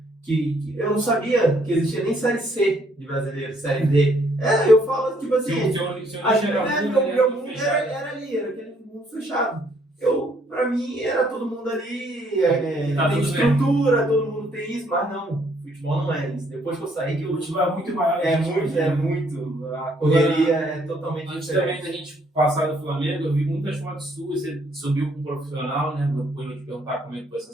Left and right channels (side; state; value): both; normal; correlation 0.67